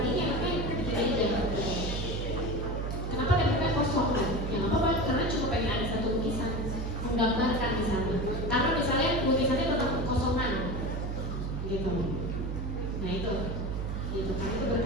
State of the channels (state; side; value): noise; right; hum, 3 dB below the sound